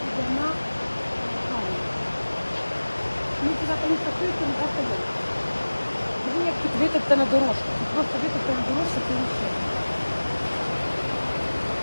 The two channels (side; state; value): both; inverted; correlation -1.00